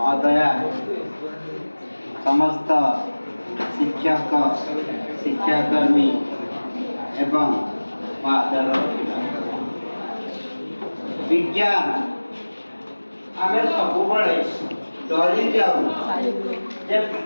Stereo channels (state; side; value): inverted; both; correlation -1.00